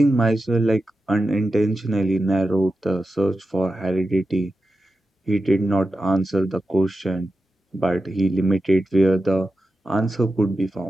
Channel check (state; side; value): normal; both; correlation 0.91